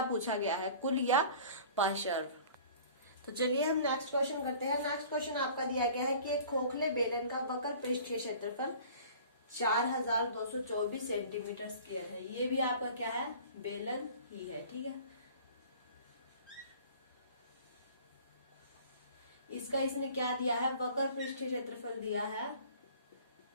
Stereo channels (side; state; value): both; inverted; correlation -0.46